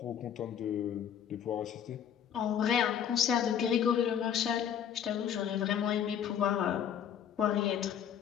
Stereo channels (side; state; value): right; quieter; 8.9 dB